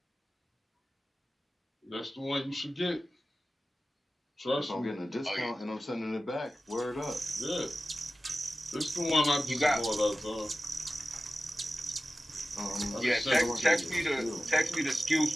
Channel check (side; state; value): both; normal; correlation 0.95